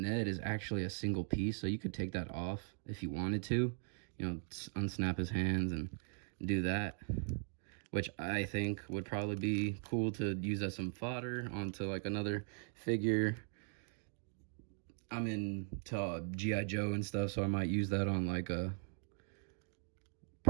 Ned is actually a single piece, so you could take that off if you wanted to. You know, unsnap his hands and do that, which I think would probably be cool to use as some fodder onto like another figure. I'm into G.I. Joe and stuff, so I might use that on like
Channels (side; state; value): left; silent; 51 dB below the other